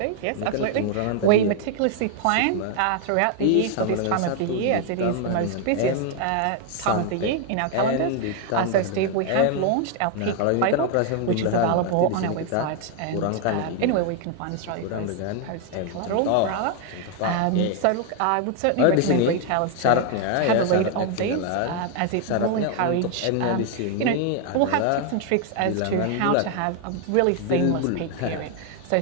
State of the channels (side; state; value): both; different; correlation 0.00